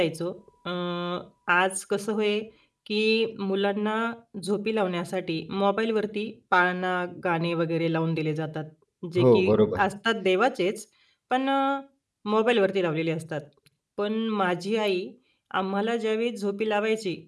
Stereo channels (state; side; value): identical; both; correlation 1.00